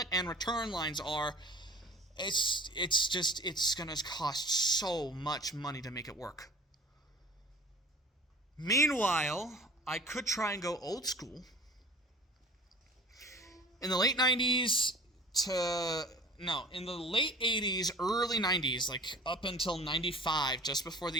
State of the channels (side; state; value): both; normal; correlation 0.44